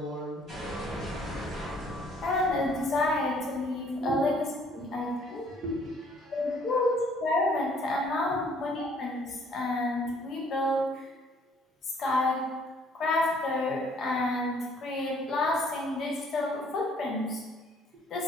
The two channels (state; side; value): normal; both; correlation 0.61